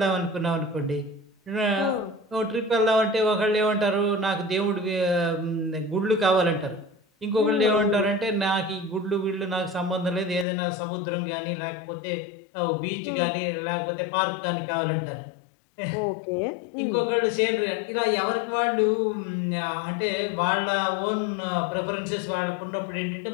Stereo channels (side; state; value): right; drops out; at 10.5 s